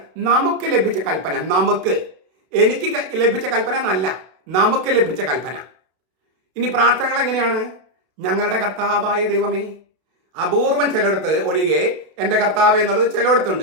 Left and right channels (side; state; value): left; late; 32 ms